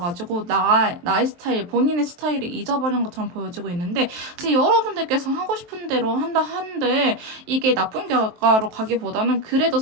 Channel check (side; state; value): left; late; 23 ms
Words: 나의 스타일, 본인의 스타일을 잊어버린 것처럼 보여지고 있는데 지금 여러분들께서 하고 싶은 대로 한다 한들 이게 나쁜 결과로 가기보다는 그래도